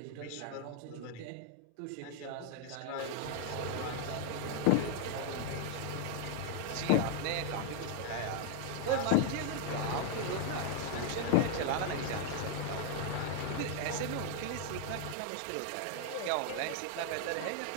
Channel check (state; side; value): different; both; correlation 0.00